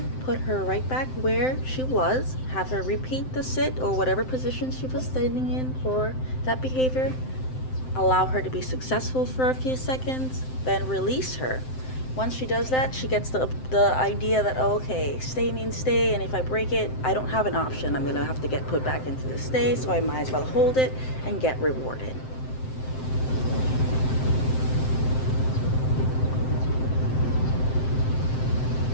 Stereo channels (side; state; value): right; late; 7.7 ms